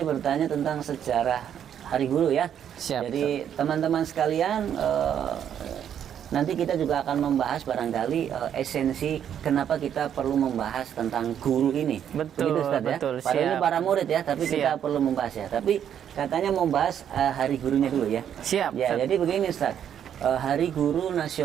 bertanya tentang sejarah Hari Guru ya. Siap, jadi teman-teman sekalian, nanti kita juga akan membahas barangkali esensi kenapa kita perlu membahas tentang guru ini. Betul, Ustaz, betul. Ya? Padahal ini para murid ya, tapi kita perlu membahas ya. Tapi katanya membahas Hari Gurunya dulu ya. Siap. Ya, jadi begini Ustaz. Hari Guru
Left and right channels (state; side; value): quieter; left; 9.3 dB